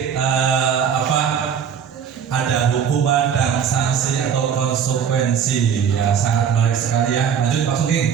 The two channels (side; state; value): left; quieter; 7.6 dB